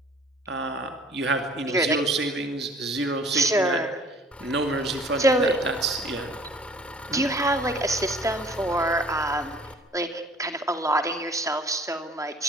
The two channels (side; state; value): both; normal; correlation 0.51